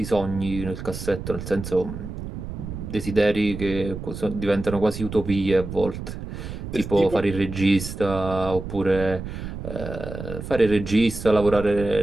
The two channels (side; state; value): right; noise; rumble, 8 dB below the sound